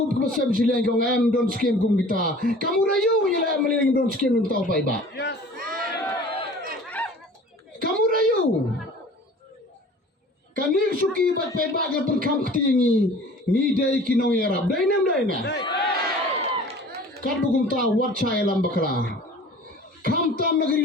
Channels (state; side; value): normal; both; correlation 0.45